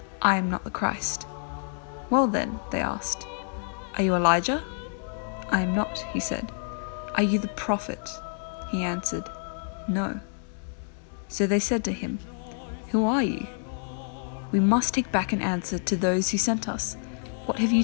"I am not the Christ." "Well then," they asked, "are you Elijah?" "I am not," he said. "Are you the prophet?" He answered, "No." So they said to him, "Who are you?" "We must take back an answer to those who sent us. What have you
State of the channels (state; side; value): silent; right; digital silence